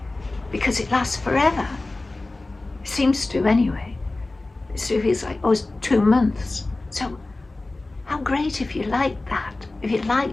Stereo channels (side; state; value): right; quieter; 3.1 dB